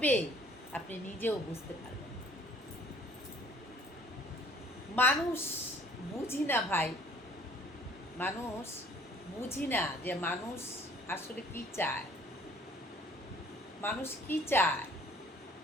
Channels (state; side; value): normal; both; correlation 0.55